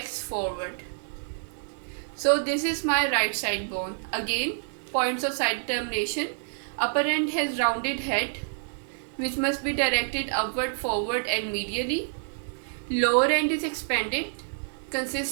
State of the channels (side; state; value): left; silent; digital silence